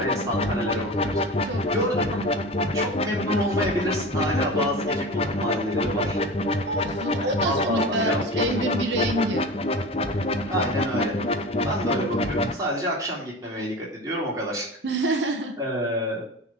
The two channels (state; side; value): normal; both; correlation 0.31